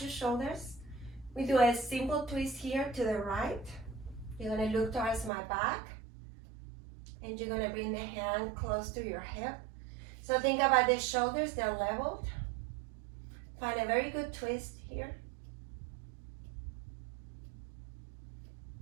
your shoulders. We do a simple twist here to the right. You're going to look towards my back. And you're going to bring the hand close to your hip. So think about the shoulders, they're leveled. Find a very good twist here.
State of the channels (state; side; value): drops out; left; at 5.3 s